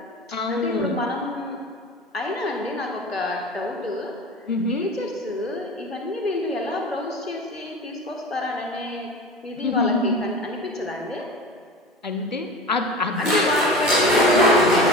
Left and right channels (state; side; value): normal; both; correlation 0.33